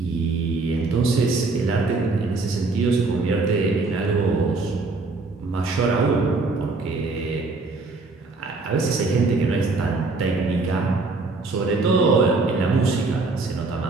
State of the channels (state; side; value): quieter; left; 3.6 dB